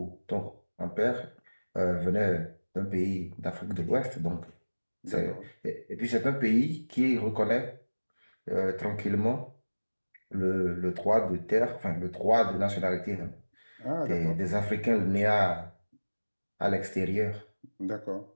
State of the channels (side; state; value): both; inverted; correlation -1.00